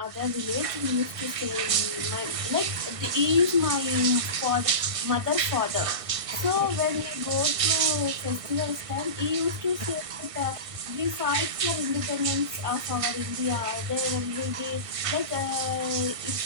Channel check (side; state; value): left; late; 1.5 ms